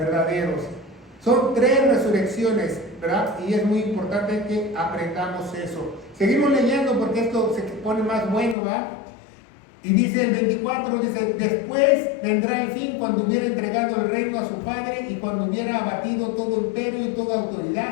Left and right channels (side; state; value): right; drops out; at 8.6 s